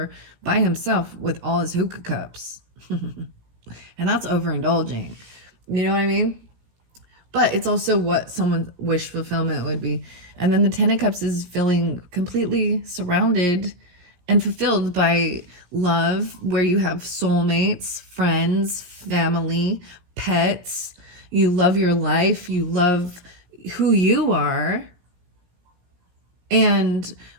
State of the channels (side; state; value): left; late; 17 ms